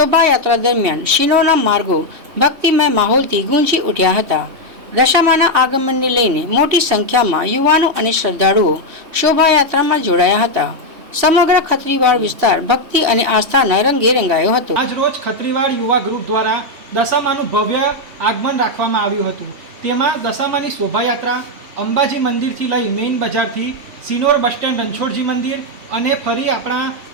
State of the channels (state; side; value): late; left; 3.2 ms